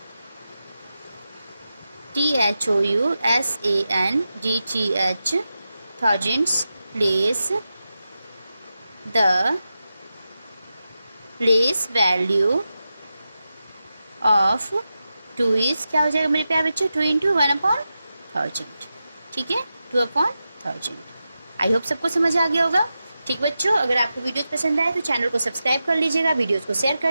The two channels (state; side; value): inverted; both; correlation -0.91